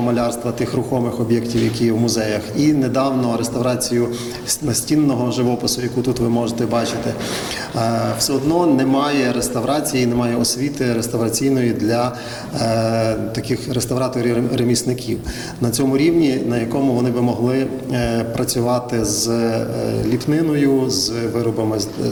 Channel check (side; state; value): both; identical; correlation 1.00